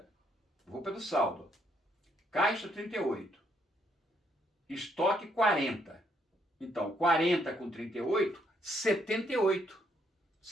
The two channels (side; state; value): both; normal; correlation 0.72